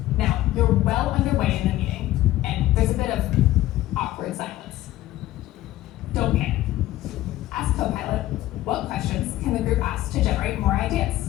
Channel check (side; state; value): right; quieter; 15.3 dB